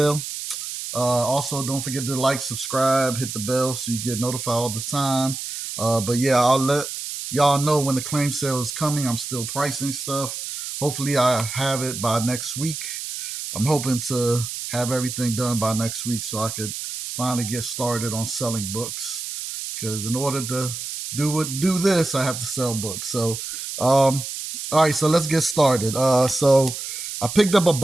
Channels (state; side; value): noise; right; hiss, 7 dB below the sound